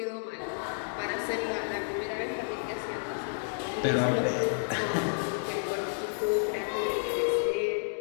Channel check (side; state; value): right; silent; digital silence